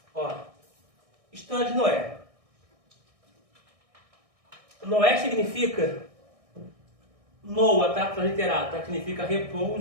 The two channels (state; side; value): late; left; 1.6 ms